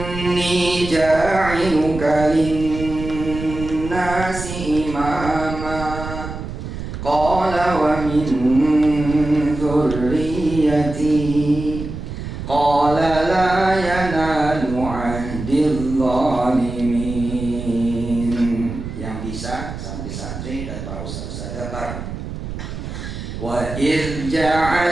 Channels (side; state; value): right; noise; rumble, 8 dB below the sound